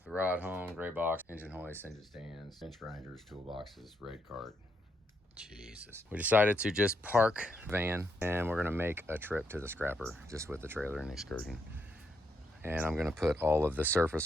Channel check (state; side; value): normal; both; correlation 0.78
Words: the rod home, gray box, engine hoist, engine stands, bench grinders, toolboxes, red cart. Jesus. We decided to just park the van and we're gonna make a trip to the scrapper just with the trailer and excursion. And I'm gonna put all of the